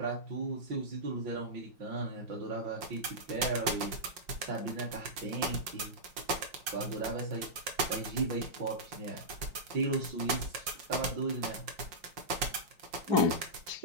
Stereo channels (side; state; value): left; late; 5.5 ms